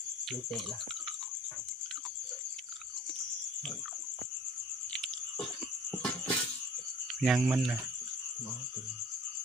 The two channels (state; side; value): normal; both; correlation 0.49